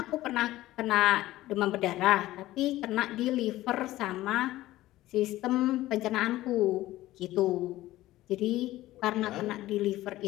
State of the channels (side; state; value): right; quieter; 16.1 dB